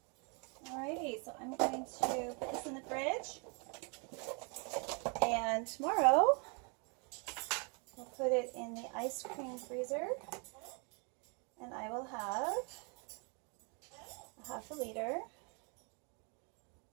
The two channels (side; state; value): left; quieter; 35.6 dB